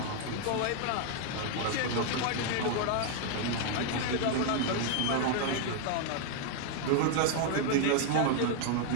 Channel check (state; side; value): different; both; correlation 0.00